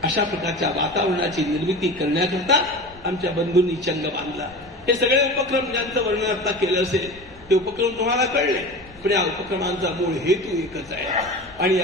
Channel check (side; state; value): left; noise; rumble, 23 dB below the sound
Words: अशा प्रकारच्या वातावरणाची निर्मिती करण्याकरता आमच्या बंधूंनी चंग बांधला. हे सगळे उपक्रम ज्यांचं वर्णन आता केलं असेल ते उपक्रम तुम्हाला कळले, पण या उपक्रमांचा मूळ हेतू एकच आहे. आणि